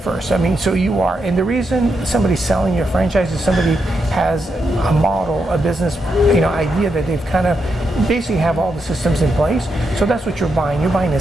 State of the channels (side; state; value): both; normal; correlation 0.83